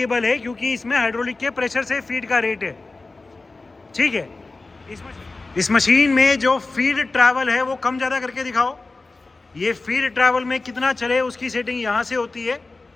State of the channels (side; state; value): right; quieter; 3.5 dB